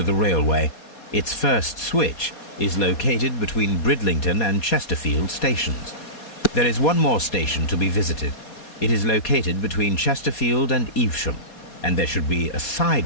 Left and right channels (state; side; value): late; right; 4.2 ms